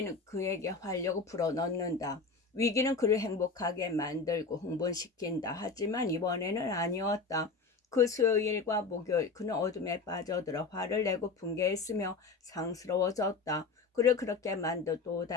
그에게 활력을 불어넣는다. 위기는 그를 행복하게 만들고 흥분시킨다. 하지만 이번에는 아니었다. 그 수요일과 목요일 그는 어둠에 빠져들어 화를 내고 분개했으며 상스러워졌다. 그를 그렇게 만든 또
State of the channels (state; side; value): quieter; right; 4.2 dB